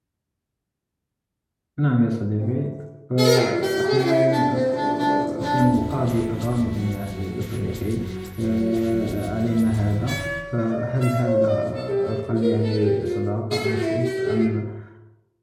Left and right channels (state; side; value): identical; both; correlation 1.00